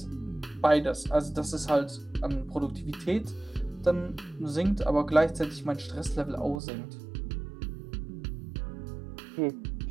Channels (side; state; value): left; drops out; at 6.6 s